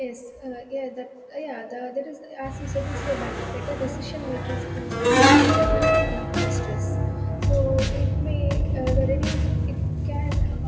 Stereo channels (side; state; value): both; identical; correlation 1.00